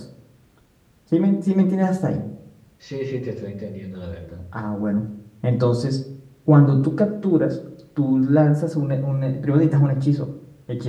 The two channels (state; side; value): identical; both; correlation 1.00